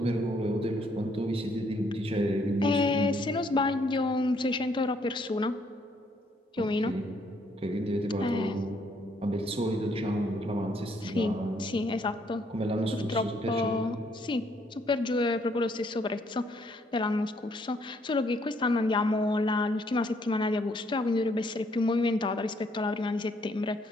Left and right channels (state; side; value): normal; both; correlation 0.68